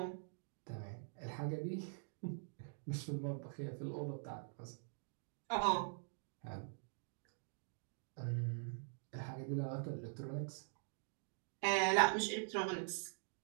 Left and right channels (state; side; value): silent; left; digital silence